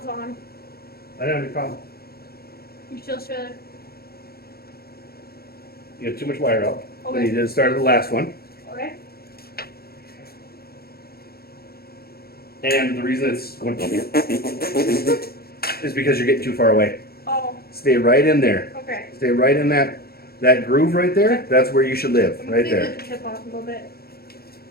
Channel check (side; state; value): right; late; 0.45 ms